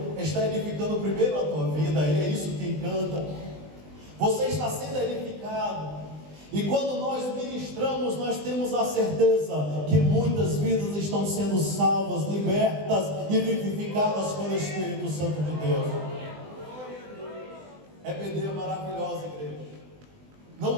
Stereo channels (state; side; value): late; left; 20 ms